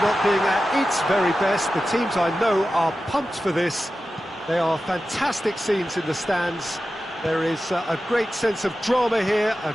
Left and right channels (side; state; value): both; normal; correlation 0.93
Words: being at its very best. The teams I know are pumped for this. They are fantastic scenes in the stands. There is a great sense of drama here, a